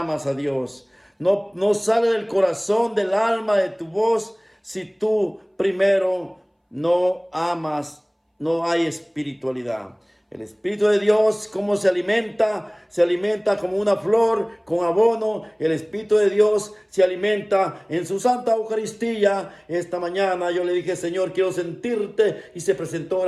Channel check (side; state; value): both; identical; correlation 1.00